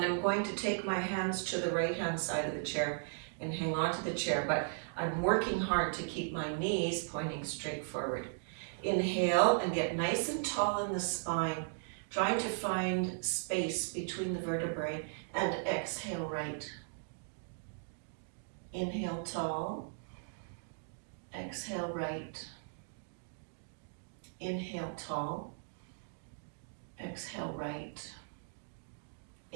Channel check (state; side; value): silent; left; digital silence